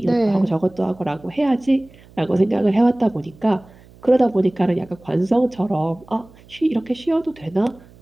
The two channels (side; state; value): right; noise; hum, 25 dB below the sound